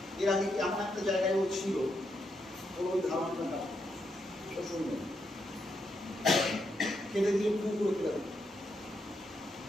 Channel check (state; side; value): normal; both; correlation 0.80